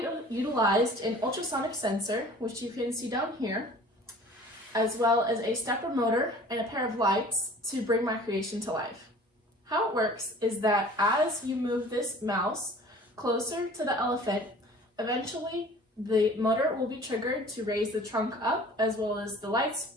utilized an ultrasonic sensor, which you can see down here, as well as a stepper motor and a pair of lights to bring my creation to life. How it works is that as you move this mouse closer to the elephant, eventually the motor will be triggered to raise the trunk up, as well as the lights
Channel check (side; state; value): both; normal; correlation 0.47